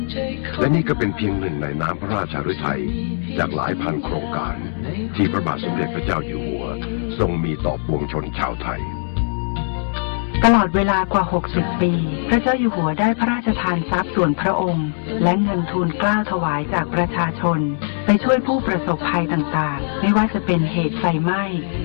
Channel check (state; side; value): silent; right; 65 dB below the other